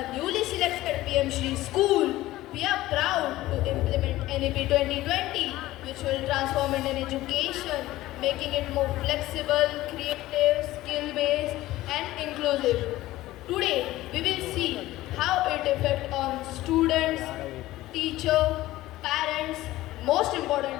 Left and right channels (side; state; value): right; quieter; 16.5 dB